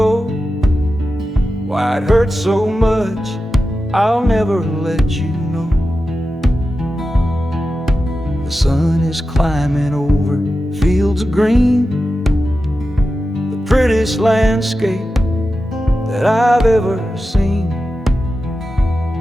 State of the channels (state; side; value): normal; both; correlation 0.92